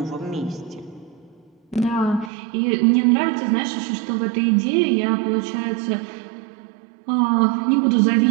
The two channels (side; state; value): left; drops out; at 2.3 s